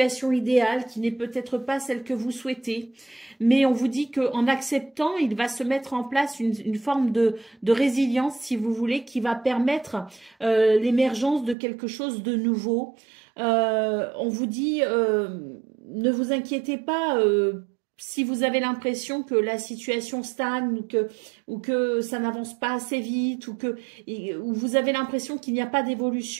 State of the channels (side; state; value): left; drops out; at 11.6 s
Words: idéale, qui n'est peut-être pas celle que vous souhaitez. Mais on vous dit qu'en acceptant, il va se mettre en place une forme de résilience, si vous voulez, qui va permettre l'émergence de quelque chose de nouveau. On vous dit, ne vous inquiétez pas si vous avez l'impression que la situation stagne ou que ça n'avance pas assez vite ou vous avez l'impression qu'il n'y a pas